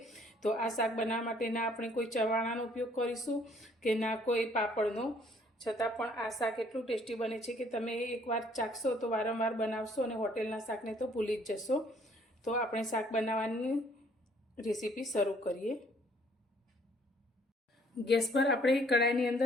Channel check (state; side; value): normal; both; correlation 0.62